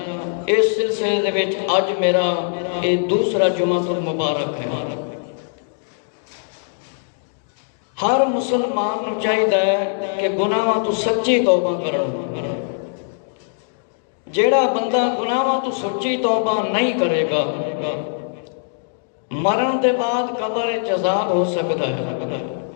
اس سلسلے دے وچ اج میرا یہ دوسرا جمعہ مبارک ہے۔ ہر مسلمان کو چاہیے کہ گناہاں تو سچی توبہ کرن۔ جیڑا بندہ گناہاں تو سچی توبہ نہیں کرے گا مرن دے بعد قبر عذاب ہو سکتا ہے،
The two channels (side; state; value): right; silent; digital silence